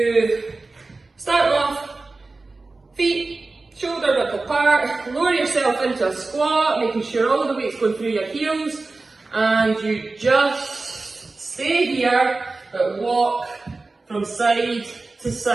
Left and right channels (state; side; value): quieter; left; 3.5 dB